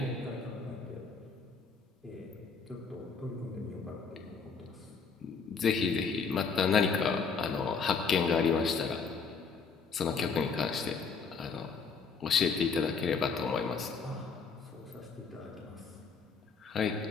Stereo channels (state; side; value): quieter; right; 5.3 dB